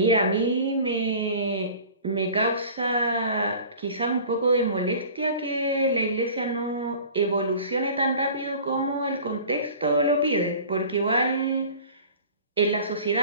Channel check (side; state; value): both; inverted; correlation -0.44